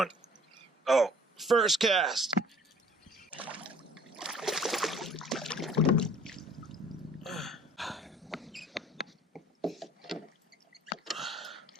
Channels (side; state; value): both; normal; correlation 0.53